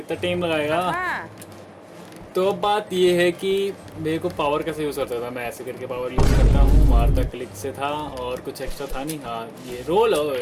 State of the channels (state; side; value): identical; both; correlation 1.00